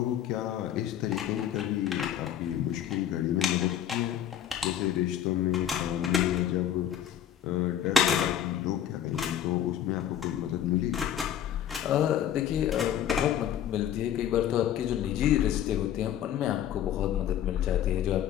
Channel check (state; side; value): quieter; right; 10.4 dB